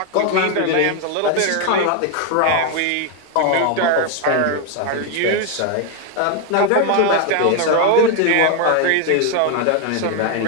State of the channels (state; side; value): different; both; correlation 0.01